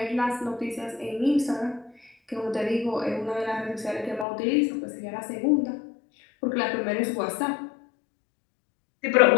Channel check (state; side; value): drops out; right; at 4.2 s